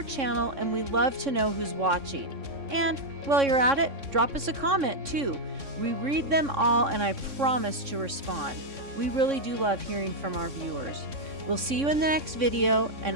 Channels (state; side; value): late; left; 3.6 ms